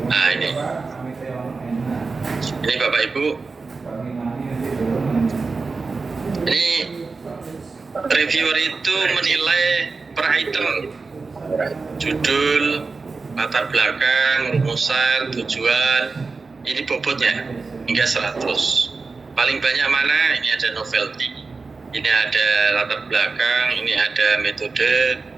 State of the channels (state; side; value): quieter; left; 4.2 dB